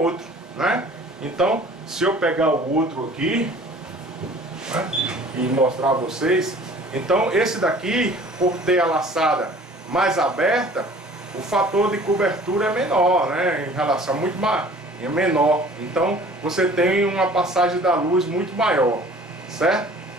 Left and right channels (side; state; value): both; normal; correlation 0.49